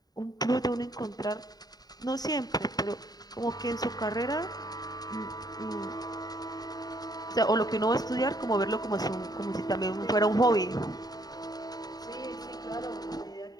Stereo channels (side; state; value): right; late; 0.19 ms